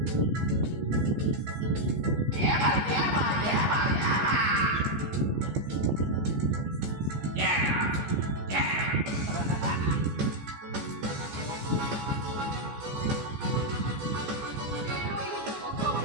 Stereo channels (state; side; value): late; left; 14 ms